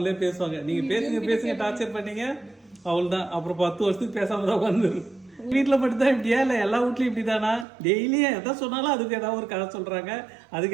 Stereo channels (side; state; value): left; drops out; at 7.7 s